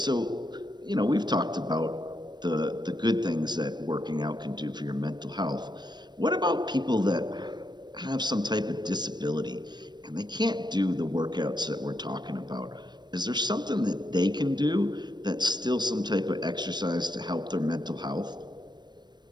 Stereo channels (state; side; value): late; left; 0.21 ms